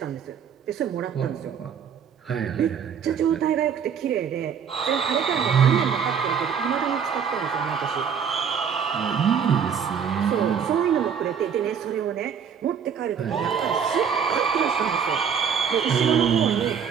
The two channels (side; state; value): left; quieter; 7.3 dB